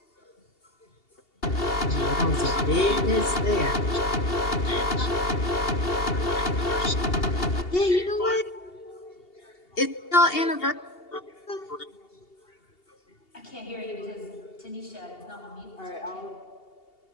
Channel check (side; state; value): right; late; 2.8 ms